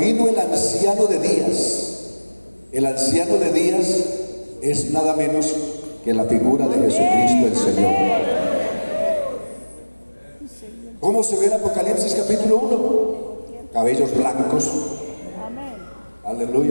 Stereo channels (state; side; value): inverted; both; correlation -1.00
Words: el anciano de días. El anciano de días es nada menos que la figura de Jesucristo el Señor. ¿Cómo se ve en Apocalipsis capítulo 1? Cabellos blancos.